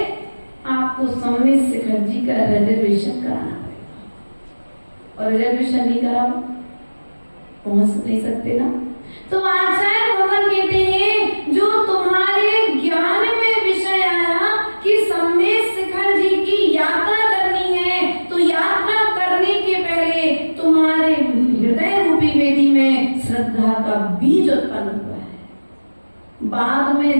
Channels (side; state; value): both; inverted; correlation -1.00